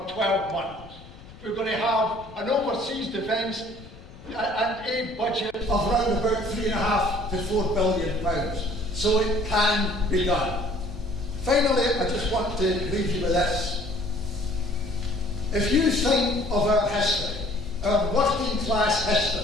12 months. We're going to have an overseas defence and aid budget of around about £3.5 to £4 billion. So it can be done. Finally, I just want to leave you with this. If you think of our history, our working class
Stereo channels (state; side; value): noise; left; rumble, 19 dB below the sound